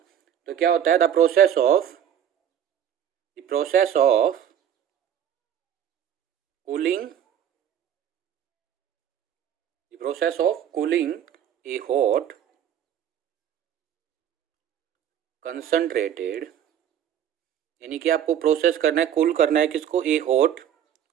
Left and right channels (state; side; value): quieter; left; 9.6 dB